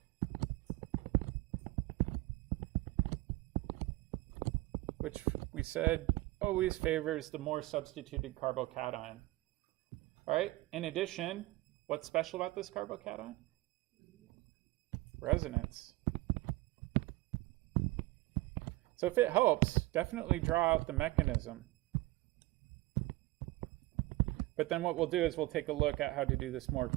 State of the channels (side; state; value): left; quieter; 19.8 dB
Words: Which we said always favors the more substituted carbocation. All right, in addition, what's special about this carbocation? Resonance. So if it helps, definitely draw out the mechanism. But then what we'll do is we'll take a look at how to do this more